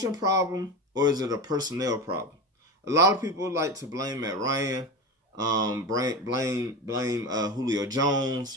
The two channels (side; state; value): both; normal; correlation 0.24